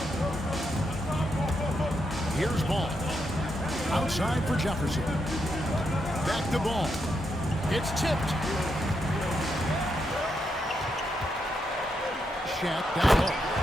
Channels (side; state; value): both; normal; correlation 0.81